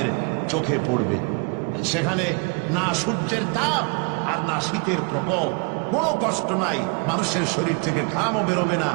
চোখে পড়বে। সেখানে না সূর্যের তাপ আর না শীতের প্রকোপ, কোনো কষ্ট নাই, মানুষের শরীর থেকে ঘামও বেরোবে না,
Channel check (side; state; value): left; quieter; 35.4 dB